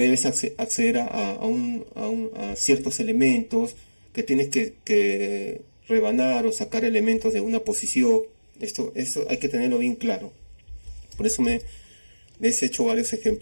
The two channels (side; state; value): both; inverted; correlation -1.00